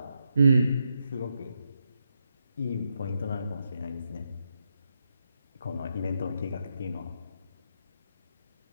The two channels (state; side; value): inverted; both; correlation -0.83